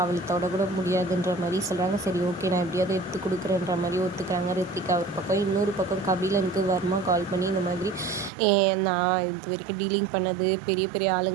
அவளை தொடக்கூட முடியாதுன்ற மாதிரி சொல்கிறாங்க. சரி ஓகே நான் எப்படியாவது எடுத்து கொடுக்குறேன்ற மாதிரி ஒத்துக்கிறாங்க ரித்திகா ஒரு பக்கம். இன்னொரு பக்கம் கபிலனுக்கு வர்மா கால் பண்ணி இந்த மாதிரி நான் இது வரைக்கும் டீலிங் பண்ணது பெரிய பெரிய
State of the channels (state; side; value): drops out; left; at 8.3 s